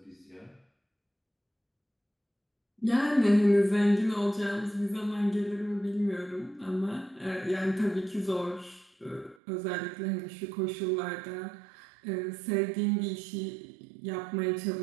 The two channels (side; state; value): left; drops out; at 9.3 s